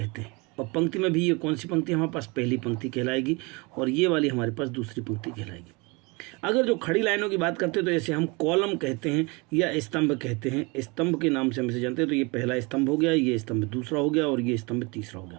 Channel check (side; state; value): left; quieter; 27.8 dB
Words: हैं। और पंक्ति में भी ये कौन सी पंक्ति हमारे पास? पहली पंक्ति कहलाएगी, और ये वाली हमारे पास दूसरी पंक्ति कहलाएगी। अगर जो खड़ी लाइनों की बात करते हैं तो इसे हम कॉलम कहते हैं या स्तंभ कहते हैं। स्तंभ के नाम से हम इसे जानते हैं। तो ये पहला स्तंभ हो गया, ये स्तंभ दूसरा हो गया, और ये स्तंभ तीसरा हो